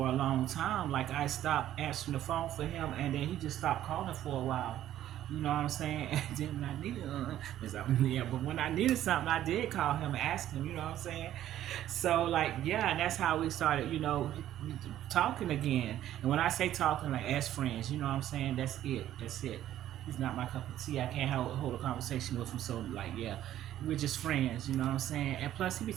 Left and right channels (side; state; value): left; quieter; 12.4 dB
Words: a long time. Like, I stopped answering the phone for him, and then he just stopped calling for a while. You know what I'm saying? And then when I needed yeah, but when I needed something, I did call him and ask him, you know what I'm saying? So, like, yeah, and that's how we started, talking again. And when I say talking, like, as friends, you know what I'm saying? That's it. That's it. He's not my cup of tea. I can't hold a conversation with him. So, like, yeah, we're just friends, you know what I'm saying? And plus, he be